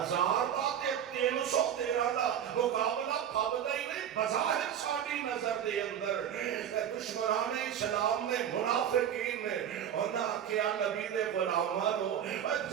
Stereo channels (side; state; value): left; quieter; 9.4 dB